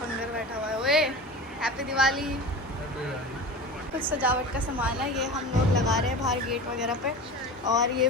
बैठा हुआ है। ओए हैप्पी दिवाली। कुछ सजावट का सामान है, ये हम लोग लगा रहे हैं बाहर गेट वगैरह पे। और ये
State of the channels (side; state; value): both; normal; correlation 0.32